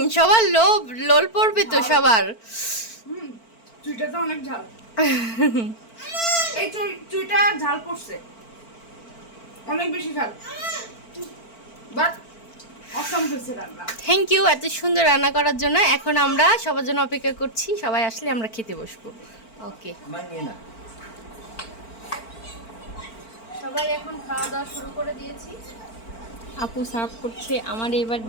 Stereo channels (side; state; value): right; late; 4.5 ms